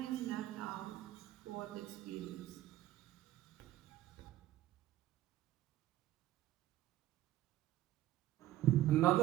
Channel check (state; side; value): quieter; left; 14.2 dB